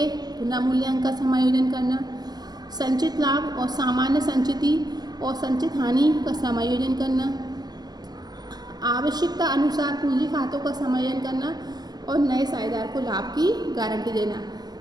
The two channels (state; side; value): late; left; 0.19 ms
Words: पुनर्मूल्यांकन का समायोजन करना, संचित लाभ और सामान्य संचिति और संचित हानि का समायोजन करना, आवश्यकता अनुसार पूंजी खातों का समायोजन करना और नए साझेदार को लाभ की गारंटी देना।